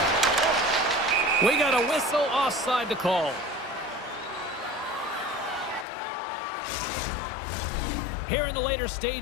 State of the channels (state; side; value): drops out; right; at 5.9 s